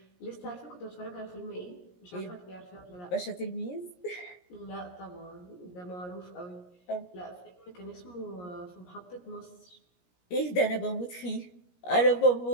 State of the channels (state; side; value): late; right; 17 ms